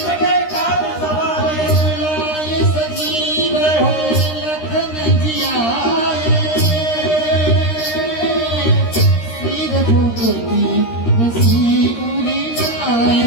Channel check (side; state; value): right; late; 13 ms